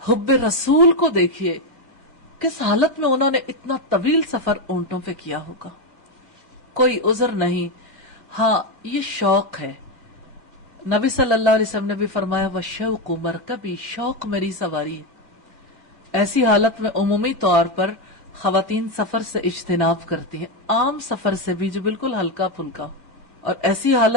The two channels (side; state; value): left; late; 4.4 ms